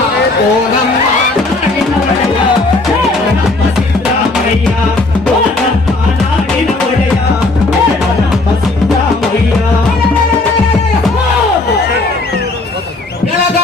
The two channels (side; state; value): right; quieter; 3.1 dB